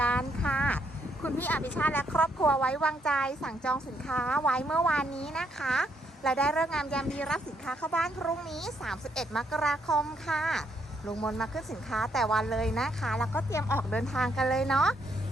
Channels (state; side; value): normal; both; correlation 0.73